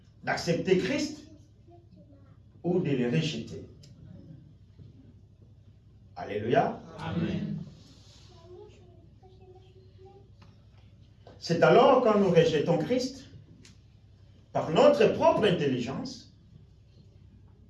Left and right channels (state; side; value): identical; both; correlation 1.00